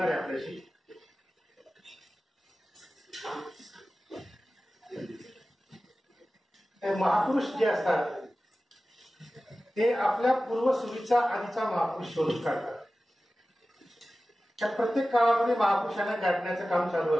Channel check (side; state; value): both; normal; correlation 0.96